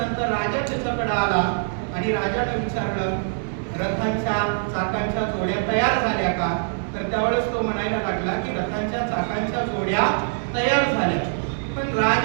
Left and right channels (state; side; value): silent; left; 63 dB below the other